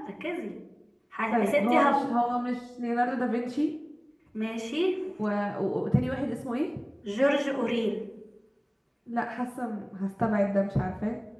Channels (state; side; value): identical; both; correlation 1.00